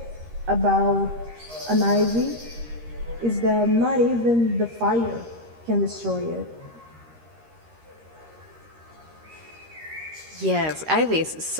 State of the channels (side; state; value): left; late; 13 ms